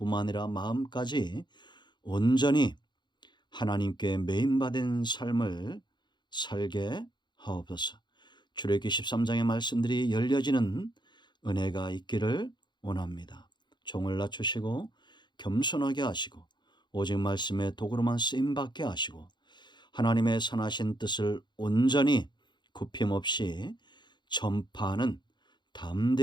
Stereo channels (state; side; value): late; right; 0.22 ms